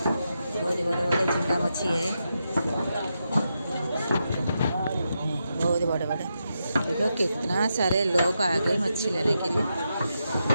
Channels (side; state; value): both; inverted; correlation -0.86